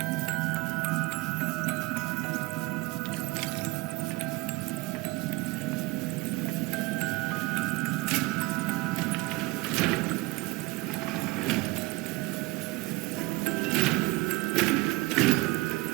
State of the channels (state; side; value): quieter; left; 22.3 dB